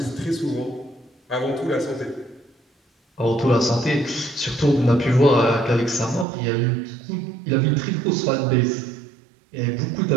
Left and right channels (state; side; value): drops out; left; at 6.2 s